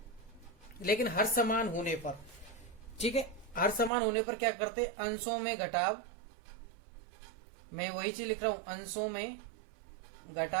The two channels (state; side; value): drops out; left; at 3.9 s